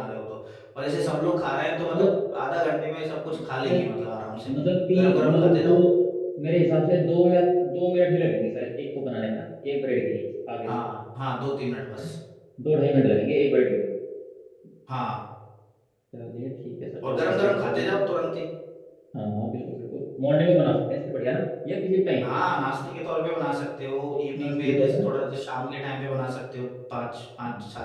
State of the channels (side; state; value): both; identical; correlation 1.00